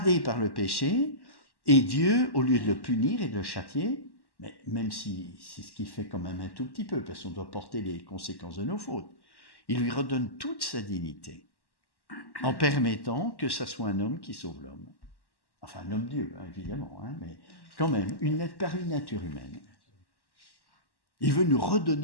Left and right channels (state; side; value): late; right; 1.1 ms